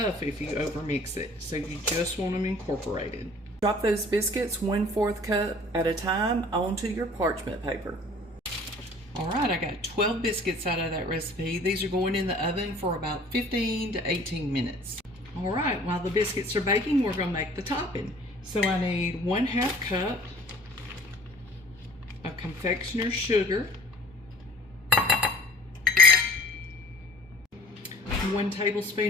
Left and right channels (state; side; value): normal; both; correlation 0.49